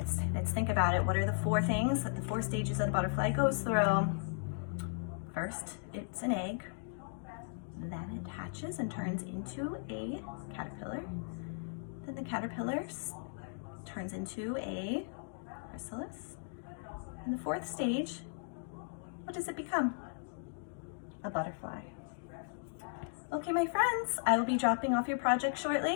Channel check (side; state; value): right; silent; digital silence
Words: think about it. What are the 4 things that the 4 stages that the butterfly goes through? First, it's an egg. Then it hatches and turns into a caterpillar. Then the caterpillar turns into a chrysalis. And the 4th stage, what does it become? A butterfly. Okay, my friends, I will be dropping off your project